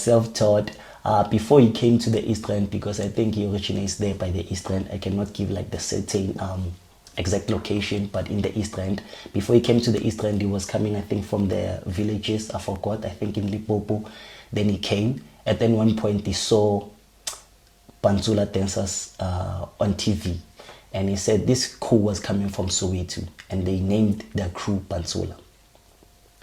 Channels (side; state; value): both; identical; correlation 1.00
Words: before he came to the East End, because I think he originates there by the East End. I cannot give like the certain exact location, but in the East End. Before he came to the East End, he was coming, I think, from the villages. I forgot. I think in Limpopo. Then he came. At then one point, he saw Pantsula dancers on TV, and he said this crew was coming from Soweto, and they named their crew Pantsula.